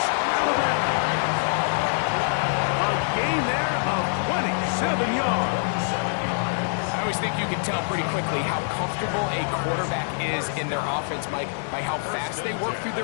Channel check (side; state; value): right; silent; digital silence